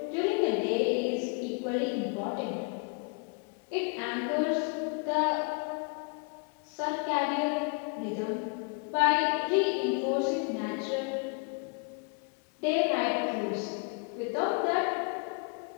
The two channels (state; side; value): quieter; right; 37.1 dB